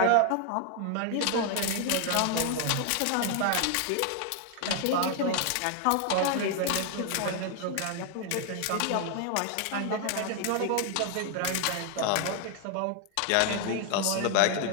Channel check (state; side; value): different; both; correlation 0.00